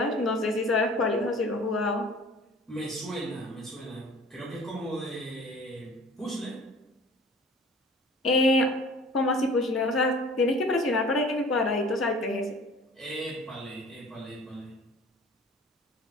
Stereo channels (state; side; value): normal; both; correlation 0.46